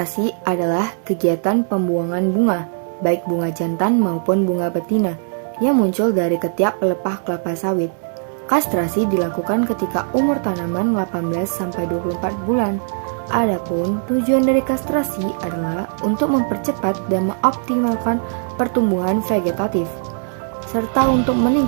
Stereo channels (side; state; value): left; silent; digital silence